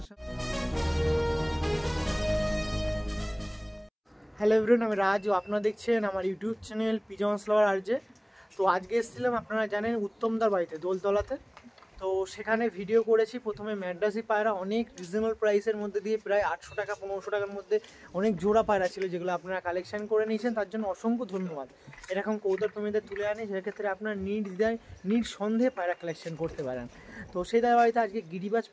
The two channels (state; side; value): identical; both; correlation 1.00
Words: সাথে। হ্যালো এভরিওয়ান, আমি রাজ, আপনারা দেখছেন আমার ইউটিউব চ্যানেল পিজন্স লাভার আরজে। তো আজকে এসেছিলাম আপনারা জানেন উত্তমদার বাড়িতে দোলতলাতে। তো সেখানে ভিডিও করেছি। প্রথমে ম্যাড্রাসি পায়রা অনেক রিজনেবল প্রাইসের মধ্যে দিয়ে প্রায় 800 টাকা 1500 টাকার মধ্যে অনেক জোড়া পায়রা ছিল, যেগুলো আপনারা কালেকশন করে নিয়েছেন, তার জন্য অসংখ্য ধন্যবাদ। এরকম কবুতর প্রেমীদের তুলে আনি, সেক্ষেত্রে আপনার নিঃসন্দেহে পায়রা কালেকশন করতে পারেন। তো সেই তার বাড়িতে আজকে গিরিবাজ